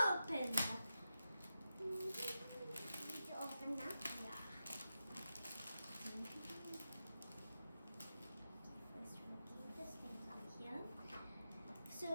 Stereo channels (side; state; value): both; inverted; correlation -0.90